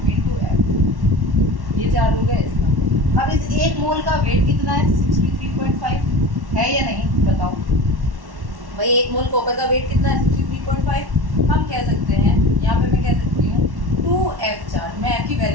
× F, ये चार्ज हो गया इसका। अब इस एक मोल का वेट कितना है 63.5 है या नहीं बताओ भाई। एक मोल कॉपर का वेट कितना है 63.5। हम कह सकते हैं यहाँ पे मैं कह सकती हूँ 2F चार्ज, मैं F की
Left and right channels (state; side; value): late; left; 1.1 ms